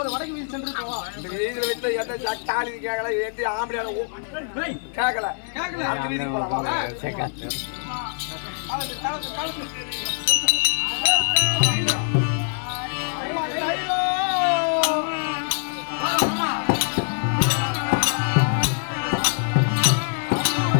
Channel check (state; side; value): silent; right; digital silence